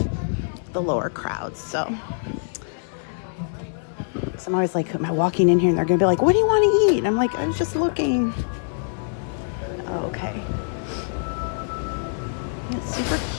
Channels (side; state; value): right; silent; digital silence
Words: the lower crowds. So I'm always like, am I walking in here and they're gonna be like, what do you want to eat? And I'm like, I'm just looking. Okay. It's super